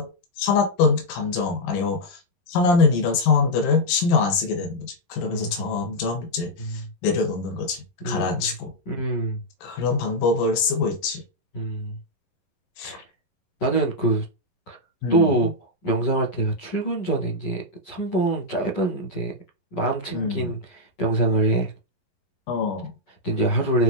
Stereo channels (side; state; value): right; late; 11 ms